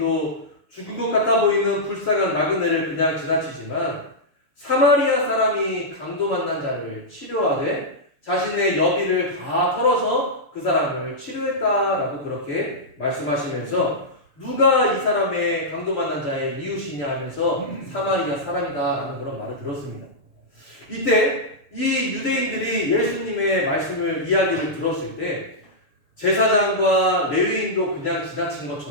죽을 것 같아 보이는 불쌍한 나그네를 그냥 지나치지만 사마리아 사람이 강도 만난 자를 치료하되 자신의 여비를 다 털어서 그 사람을 치료했다라고 그렇게 말씀하시면서 누가 이 사람의 강도 만난 자의 이웃이냐 하면서 사마리아 사람이다라는 그런 말을 들었습니다. 이때 이 유대인들이 예수님의 말씀을 이야기를 들었을 때 제사장과 레위인도 그냥 지나친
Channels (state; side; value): late; right; 6.8 ms